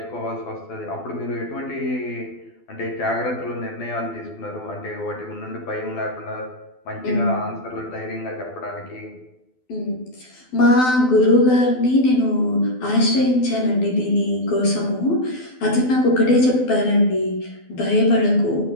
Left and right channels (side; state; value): right; late; 12 ms